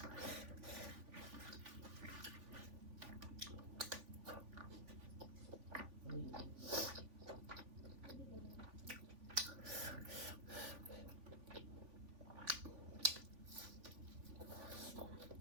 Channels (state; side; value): late; left; 3.5 ms